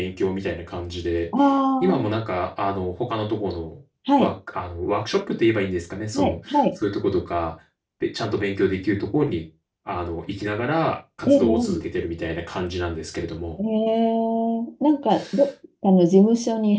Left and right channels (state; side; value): identical; both; correlation 1.00